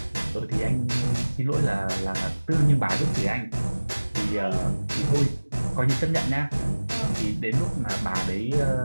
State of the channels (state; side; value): inverted; both; correlation -1.00